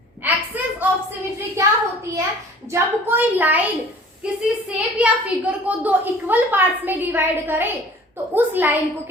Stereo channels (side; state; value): both; normal; correlation 0.48